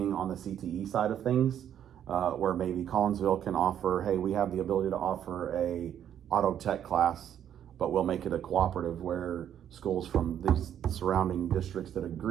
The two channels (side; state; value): left; quieter; 9.9 dB